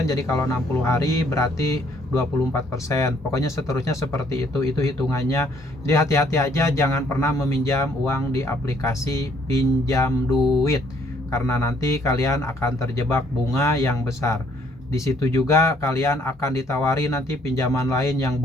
Jadi kalau 60 hari berarti 24%. Pokoknya seterusnya seperti itu hitungannya. Jadi hati-hati aja, jangan pernah meminjam uang di aplikasi pinjam duit karena nanti kalian akan terjebak bunga yang besar. Di situ juga kalian akan ditawari nanti pinjaman lain yang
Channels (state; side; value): normal; both; correlation 0.65